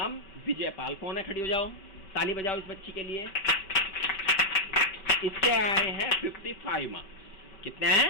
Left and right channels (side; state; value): right; late; 5.2 ms